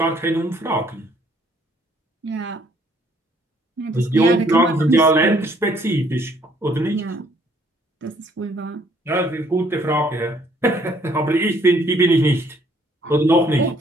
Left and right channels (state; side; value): normal; both; correlation 0.64